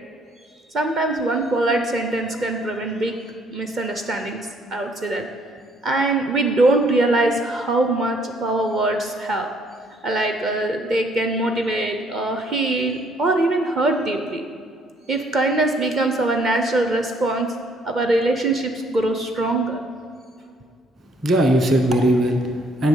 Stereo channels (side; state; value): both; normal; correlation 0.65